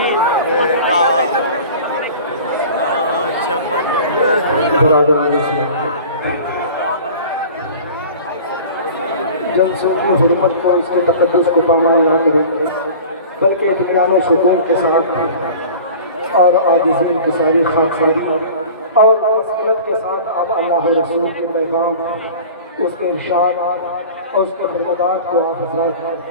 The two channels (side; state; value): both; inverted; correlation -0.40